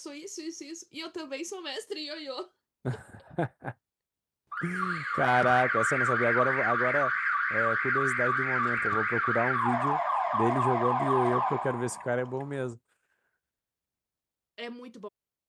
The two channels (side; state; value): both; identical; correlation 1.00